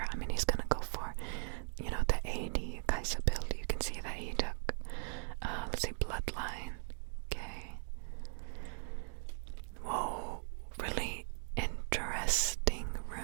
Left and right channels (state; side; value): silent; left; 52 dB below the other